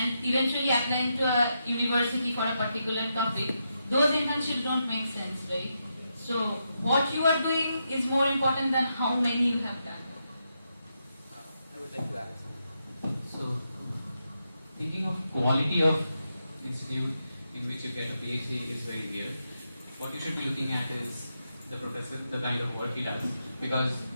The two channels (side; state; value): both; inverted; correlation -0.84